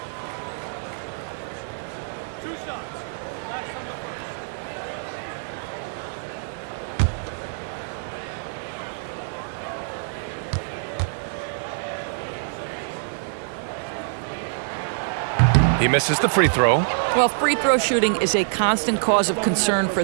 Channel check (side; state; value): left; silent; 62 dB below the other